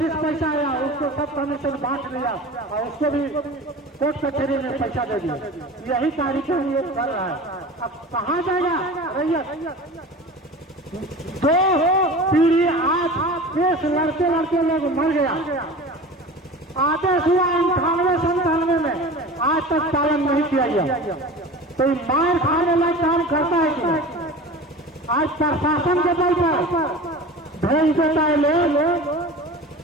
पैसा आया, उसको सब कमीशन बांट लिया और उसको भी कोर्ट कचहरी में पैसा दे दिया। यही कार्यक्रम ये कर रहा है। अब कहाँ जाएगा रैयत? 2 पीढ़ी आज केस लड़ते लड़ते लोग मर गया। आदेश हुआ 98-97 में, आज तक पालन नहीं किया गया। तो मार खाने लायक काम करता है कि आज प्रशासन के बल पर भेज देता है लोग।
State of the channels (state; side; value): normal; both; correlation 0.36